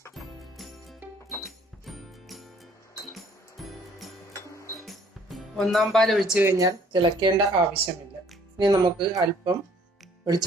ഒന്നാം പാൽ ഒഴിച്ചു കഴിഞ്ഞാൽ തിളക്കേണ്ട ആവശ്യമില്ല. ഇനി നമുക്ക് അല്പം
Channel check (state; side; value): normal; both; correlation 0.59